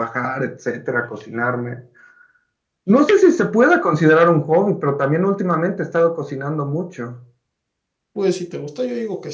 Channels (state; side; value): identical; both; correlation 1.00